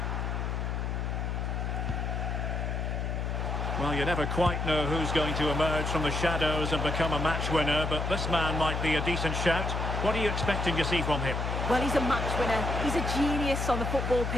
Well, you never quite know who's going to emerge from the shadows and become a match winner, but this man might be a decent shout. What are you expecting to see from him? Well, he's a match winner. He's a genius on the football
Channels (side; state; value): left; noise; hum, 1 dB below the sound